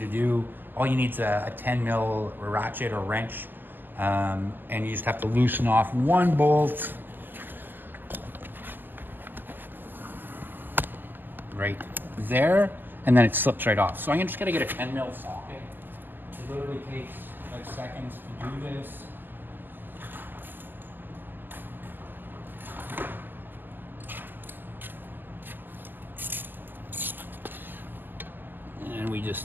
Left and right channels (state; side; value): late; left; 0.090 ms